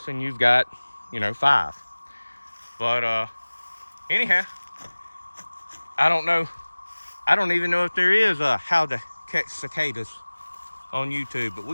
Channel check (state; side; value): inverted; both; correlation -1.00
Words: and you've got, 5. But anyhow, I don't know. I don't even know if there is a how to catch cicadas on YouTube, but